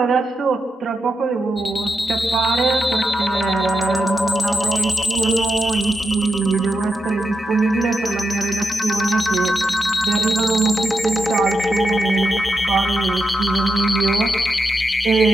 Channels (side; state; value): both; normal; correlation 0.87